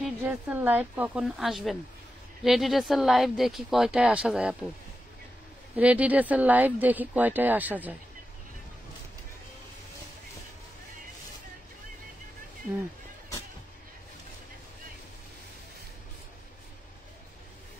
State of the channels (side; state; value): both; normal; correlation 0.90